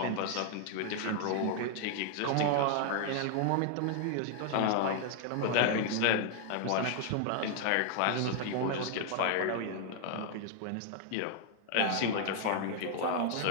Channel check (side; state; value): both; different; correlation 0.00